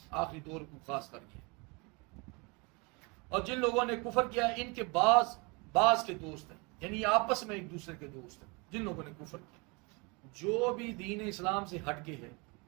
آخری دور کو خاص کر کے۔ اور جن لوگوں نے کفر کیا ان کے بعض کے دوست ہیں، یعنی آپس میں ایک دوسرے کے دوست ہیں جن لوگوں نے کفر کیا۔ جو بھی دین اسلام سے ہٹ کے ہے،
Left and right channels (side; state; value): left; quieter; 29.2 dB